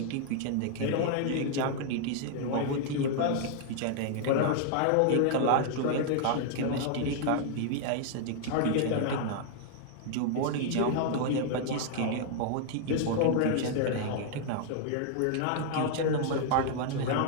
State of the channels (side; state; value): both; different; correlation 0.00